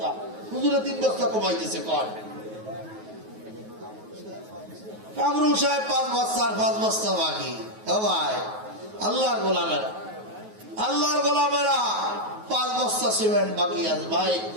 হুজুরে 3 বস্তা কমাইতেছে কয়। কামরুল সাহেব 5 বস্তা আর 5 বস্তা বাকি। ও ভাই আল্লাহর গোলামেরা, আল্লাহর গোলামেরা, 5 বস্তা সিমেন্ট বাকি আছে। ভাই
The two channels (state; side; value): late; left; 9.3 ms